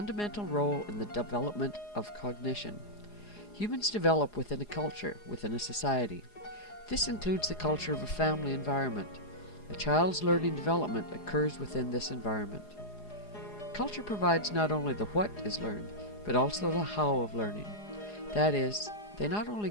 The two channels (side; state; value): right; late; 4.8 ms